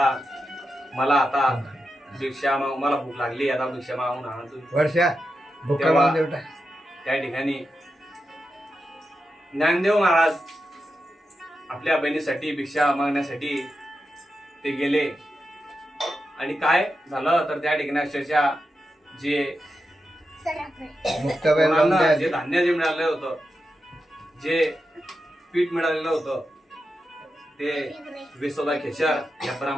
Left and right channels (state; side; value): normal; both; correlation 0.88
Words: मला आता भिक्षा मला भूक लागली, आता भिक्षा मागून आणा तुम्ही. वर्षा भुका तेव्हा लावून देवटा. त्या ठिकाणी ज्ञानदेव महाराज आपल्या बहिणीसाठी भिक्षा मागण्यासाठी ते गेले. आणि काय झालं तर त्या ठिकाणी अक्षरशः जे मुक्ताबाई लावून कोणाला जे द्या. धान्य जे मिळालं होतं, जे पीठ मिळालेलं होतं, ते विसोबा खेचर या